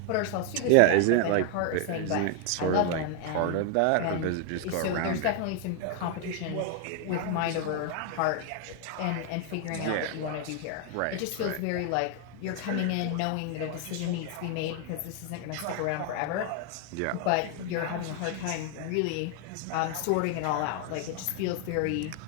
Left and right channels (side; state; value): both; different; correlation 0.00